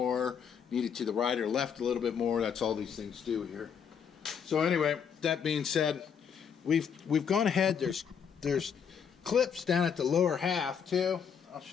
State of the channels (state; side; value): quieter; right; 7.3 dB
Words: need it to the right or left a little bit more. That's all these things do here. So anyway, that being said, we've gone ahead. There's clips down at the lower half too. I'll